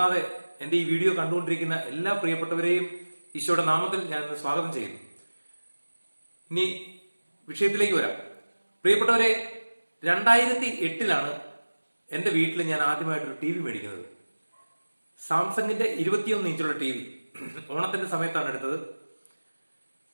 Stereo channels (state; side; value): inverted; both; correlation -1.00